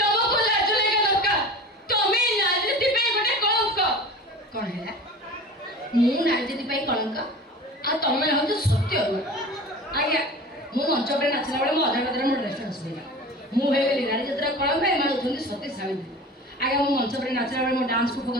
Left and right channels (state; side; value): normal; both; correlation 0.37